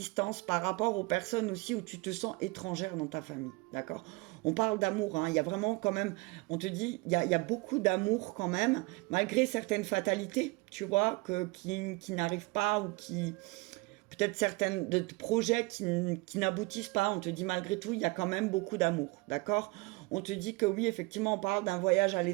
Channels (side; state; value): left; quieter; 25.1 dB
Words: par rapport aux personnes aussi où tu te sens étrangère dans ta famille. D'accord? On parle d'amour, il y a vraiment quand même, on te dit, il y a beaucoup d'amour quand même, malgré certaines fatalités, tu vois, qui n'arrivent pas ou qui... Peut-être certains de projets qui n'aboutissent pas, on te dit malgré tout, il y a quand même beaucoup d'amour, d'accord? On te dit que oui, effectivement, on parle d'un voyage à